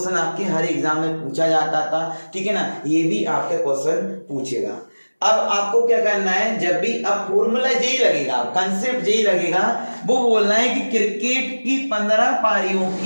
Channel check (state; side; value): inverted; both; correlation -1.00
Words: आपके हर एग्जाम में पूछा जाता था, ठीक है ना, ये भी आपका क्वेश्चन पूछेगा। अब आपको क्या करना है, जब भी अब फॉर्मूला यही लगेगा, कंसेप्ट यही लगेगा, वो बोलना है कि क्रिकेट की 15 पारियों